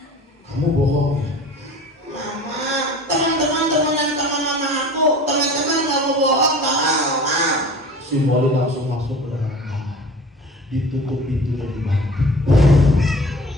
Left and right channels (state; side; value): normal; both; correlation 0.41